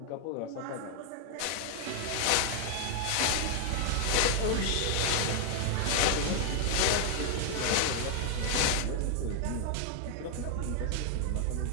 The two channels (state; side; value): different; both; correlation 0.00